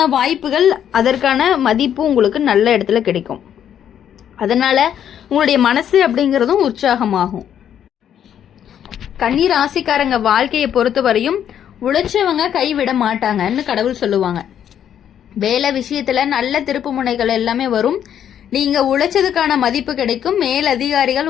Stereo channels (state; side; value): quieter; right; 9.6 dB